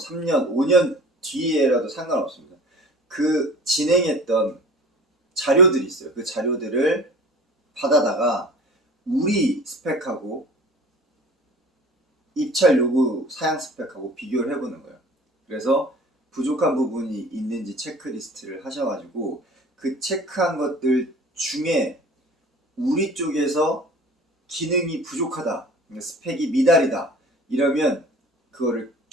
5년 뒤에라도 상관없습니다. 그 진행했던 자료들이 있어요. 그 자료들을 받아다가 우리 스펙하고 입찰 요구 사양 스펙하고 비교를 해보는 거예요. 그래서 부족한 부분이 있는지 체크리스트를 하셔가지고 그 체크한 것들 중에 우리 쪽에서 기능이 부족하다, 스펙이 미달이다 이러면 그거를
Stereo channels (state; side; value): normal; both; correlation 0.44